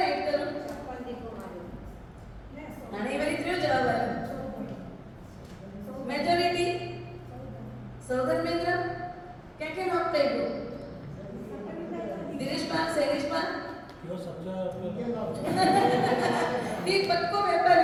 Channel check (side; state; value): both; identical; correlation 1.00